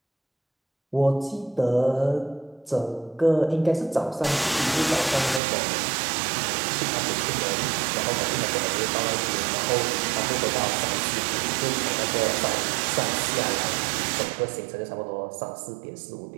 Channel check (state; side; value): drops out; left; at 5.4 s